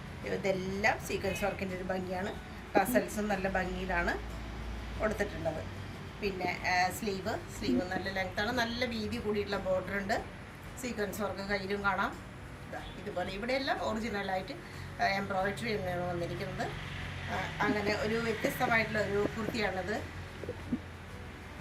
ഇതെല്ലാം സീക്വൻസ് വർക്കിൻ്റെ ഒരു ഭംഗിയാണ്. ടസൽസും നല്ല ഭംഗിയിലാണ് കൊടുത്തിട്ടുള്ളത്. പിന്നെ സ്ലീവ് നല്ല ലെങ്ത്താണ്, നല്ല വീതി കൂടിയിട്ടുള്ള ബോർഡർ ഉണ്ട്. സീക്വൻസ് വർക്ക് കയ്യിലും കാണാം. ഇതുപോലെ ഇവിടെയെല്ലാം ഒറിജിനലായിട്ട് എംബ്രോയിഡറി തന്നെയാണ് വന്നിരിക്കുന്നത്. അങ്ങനെ ഒരു വ്യത്യസ്തമായിട്ടുള്ള ഒരു കുർത്തിയാണിത്.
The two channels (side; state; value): both; identical; correlation 1.00